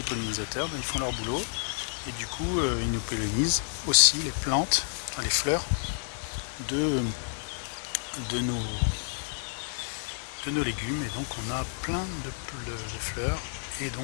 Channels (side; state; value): right; silent; 58 dB below the other